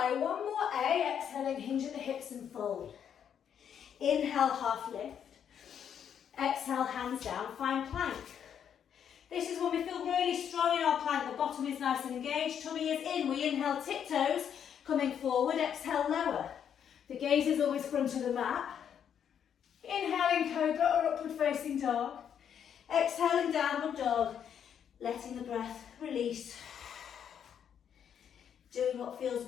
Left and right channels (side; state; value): right; quieter; 8.5 dB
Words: One more A, exhaling, hinge at the hips and fold. Inhale, half lift. Exhale, hands down, find plank. This is when we feel really strong in our plank. The bottom is nice and engaged, tummy is in. We inhale, tiptoes, coming forward, exhale, lower. The gaze is always front of the mat. Inhaling, cobra or upward facing dog. Exhaling, downward dog, letting the breath release. Doing what feels